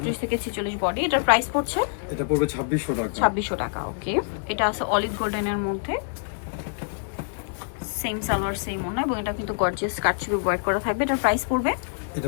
থেকে 46 বডি। এটার প্রাইস পড়ছে এটা পড়বে 2600 টাকা। 2600 টাকা। ওকে, এটা আছে অলিভ গোল্ডেনের মধ্যে, সেম সালোয়ার সেম ওড়না, এবং এটা কিন্তু গর্জিয়াস কাটছবি ওয়ার্ক করা থাকবে। এটার প্রাইস পড়বে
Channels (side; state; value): right; silent; digital silence